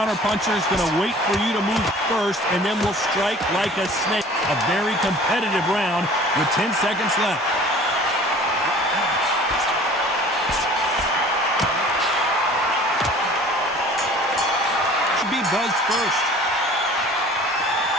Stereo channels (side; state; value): both; normal; correlation 0.47